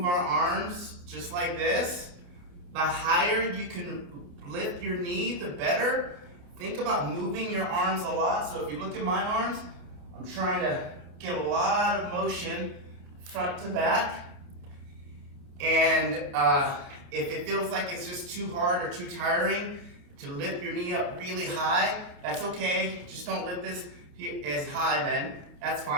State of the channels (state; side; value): late; left; 28 ms